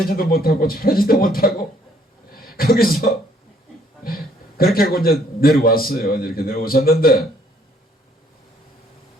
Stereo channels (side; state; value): both; normal; correlation 0.64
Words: 못하고 저러지도 못하고 거기서 그렇게 하고 이제 내려왔어요. 이렇게 내려오셨는데